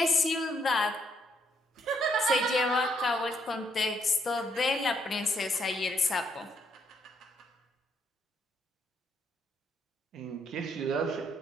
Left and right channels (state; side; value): normal; both; correlation 0.73